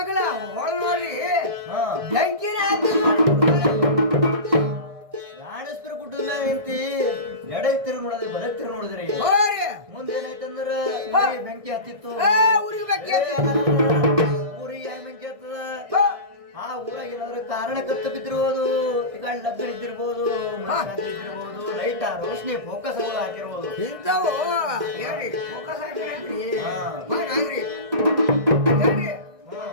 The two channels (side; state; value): left; late; 1.6 ms